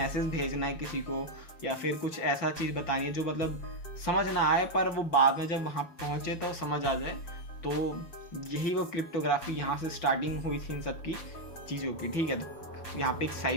भेजना है किसी को या फिर कुछ ऐसा चीज़ बतानी है जो मतलब समझ ना आए पर वो बाद में जब वहाँ पहुँचे तो समझ आ जाए। तो यही वो क्रिप्टोग्राफी यहाँ से स्टार्टिंग हुई थी इन सब की चीज़ों की, ठीक है। तो यहाँ पे एक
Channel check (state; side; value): late; right; 6.4 ms